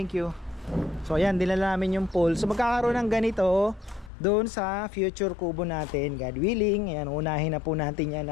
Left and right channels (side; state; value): right; drops out; at 4.1 s